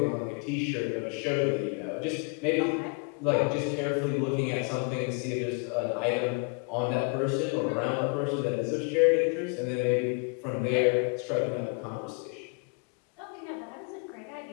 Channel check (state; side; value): quieter; right; 35.2 dB